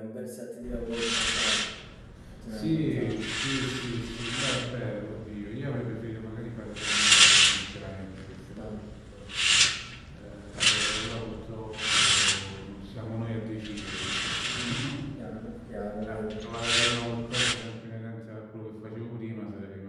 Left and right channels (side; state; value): both; identical; correlation 1.00